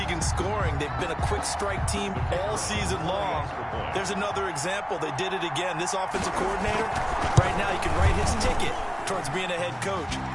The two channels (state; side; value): identical; both; correlation 1.00